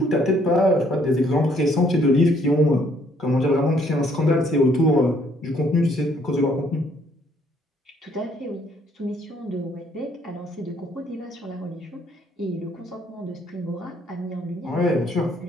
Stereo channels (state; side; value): normal; both; correlation 0.65